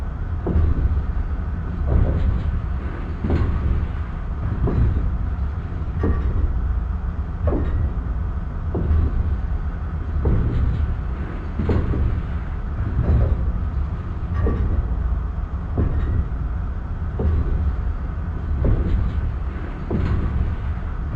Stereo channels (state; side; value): identical; both; correlation 1.00